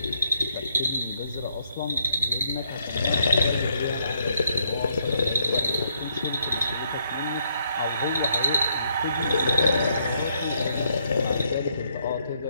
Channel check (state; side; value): inverted; both; correlation -0.72